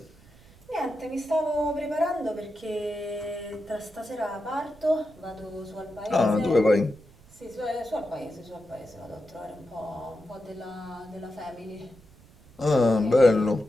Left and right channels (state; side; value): noise; right; rumble, 25 dB below the sound